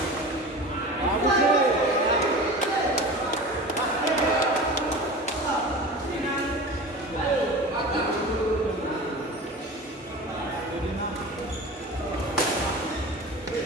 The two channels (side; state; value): both; normal; correlation 0.34